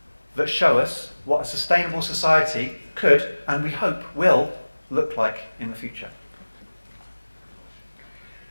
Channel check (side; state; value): both; inverted; correlation -1.00